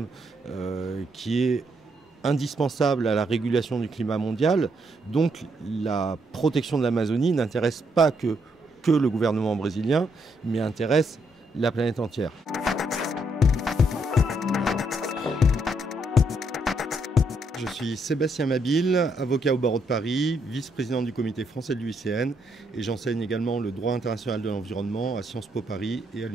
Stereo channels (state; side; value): normal; both; correlation 0.75